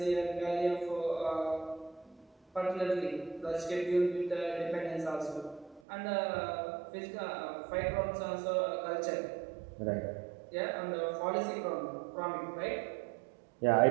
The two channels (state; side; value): drops out; left; at 5.8 s